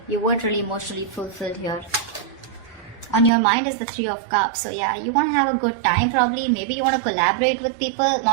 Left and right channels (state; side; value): drops out; left; at 3.3 s